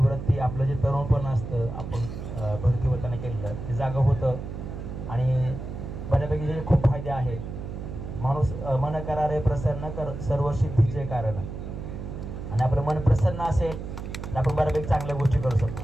आपलं जे तरुणपण असतं आपण भरती होताना केलेलं ते जागं होतं आणि बऱ्यापैकी जे खूप फायदे आहेत. माणूस मन करारे प्रसन्न कर सर्व सिद्धीचे कारण, आणि आपलं मन प्रसन्न असेल तर आपण बऱ्यापैकी चांगल्या गोष्टी करू शकतो.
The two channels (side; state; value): right; noise; hum, 8 dB below the sound